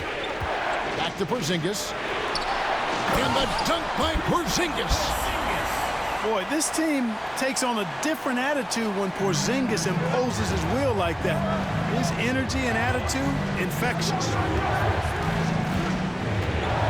Back to Porzingis. And the dunk by Porzingis. Boy, this team takes on a different attitude when Porzingis imposes his will like that. His energy and attitude, infectious.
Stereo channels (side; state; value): both; identical; correlation 1.00